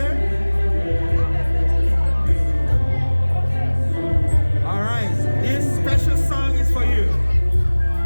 All right. This special song is for you.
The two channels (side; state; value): both; inverted; correlation -1.00